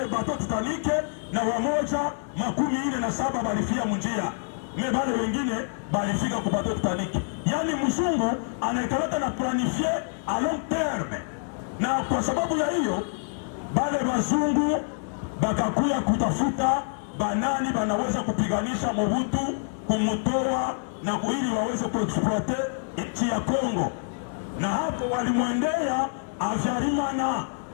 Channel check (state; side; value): silent; right; digital silence